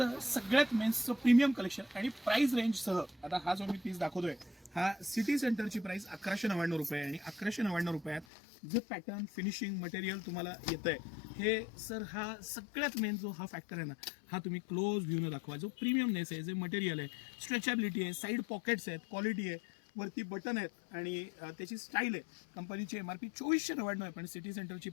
सगळ्यात मेन्सचं प्रीमियम कलेक्शन आणि प्राइस रेंजसह आता हा जो मी पीस दाखवतोय हा सिटी सेंटरची प्राइस 1199 रुपये आणि 1199 रुपयात जे पॅटर्न फिनिशिंग मटेरियल तुम्हाला येतंय हे सर हा सगळ्यात मेन जो हा फॅक्टर आहे ना हा तुम्ही क्लोज व्ह्यूनं दाखवा. जो प्रीमियमनेस आहे, जे मटेरियल आहे, स्ट्रेचॅबिलिटी आहे, साईड पॉकेट्स आहेत, क्वालिटी आहे, वरती बटन आहेत आणि त्याची स्टाईल आहे. कंपनीची MRP 2499 आहे पण सिटी सेंटरची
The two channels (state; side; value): drops out; right; at 8.2 s